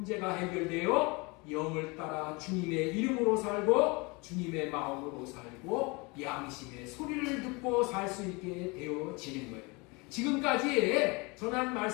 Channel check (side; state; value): right; quieter; 27.3 dB